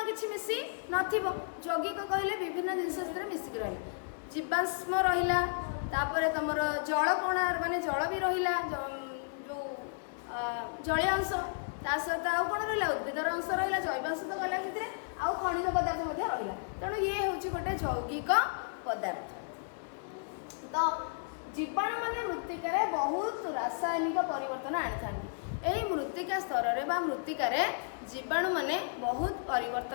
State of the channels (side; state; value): right; silent; digital silence